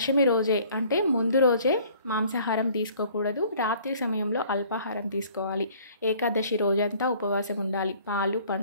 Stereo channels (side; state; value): both; inverted; correlation -0.55